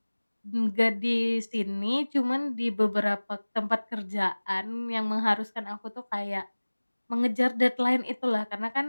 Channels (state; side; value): inverted; both; correlation -1.00